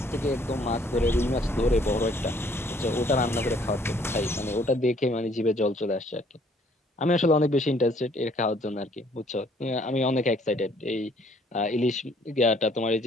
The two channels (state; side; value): normal; both; correlation 0.62